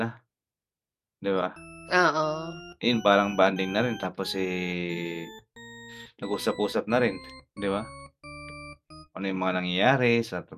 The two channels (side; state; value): both; identical; correlation 1.00